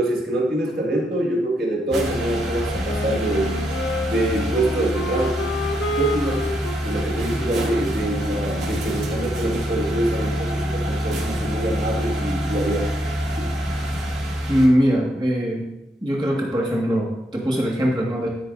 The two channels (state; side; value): normal; both; correlation 0.78